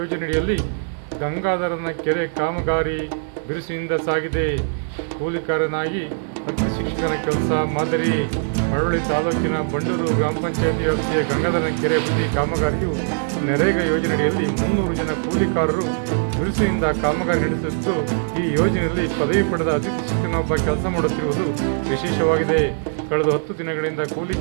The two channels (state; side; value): silent; left; digital silence